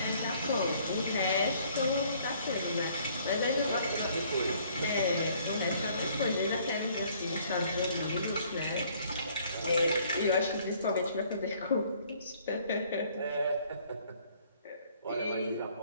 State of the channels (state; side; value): inverted; both; correlation -0.61